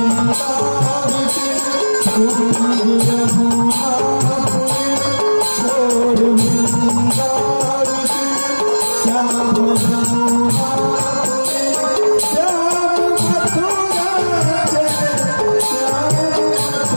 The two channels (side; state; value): both; inverted; correlation -1.00